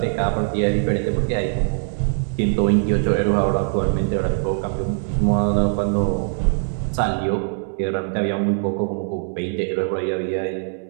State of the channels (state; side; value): silent; left; 64 dB below the other